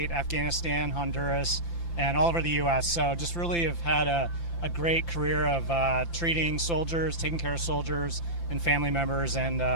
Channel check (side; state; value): right; late; 5.9 ms